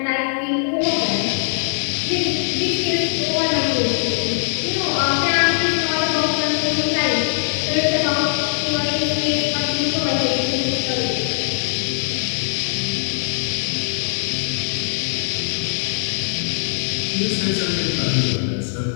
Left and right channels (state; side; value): silent; right; 63 dB below the other